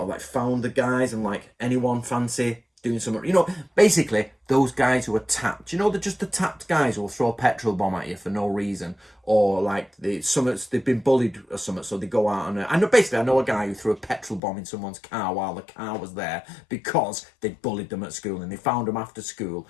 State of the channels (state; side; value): drops out; right; at 14.4 s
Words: of like found the guys and like, anyone fancy doing something, basically those guys who are tapped, they're just the tapped guys who will throw a petrol bomb at you for no reason, or like they've been bullied or something, so they go out and I know a guy who threw a petrol bomb in someone's car while the car was there because they bullied them at school, and they found them after school